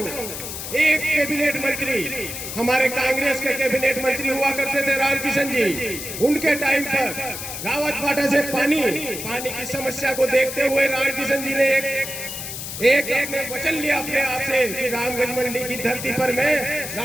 एक कैबिनेट मंत्री हमारे कांग्रेस के कैबिनेट मंत्री हुआ करते थे रामकिशन जी, उनके टाइम पर रावत भाटा से पानी की समस्या को देखते हुए रामकिशन जी ने एक अपने वचन लिया अपने आप से कि रामगंज मंडी की धरती पर मैं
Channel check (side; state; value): left; noise; hiss, 7 dB below the sound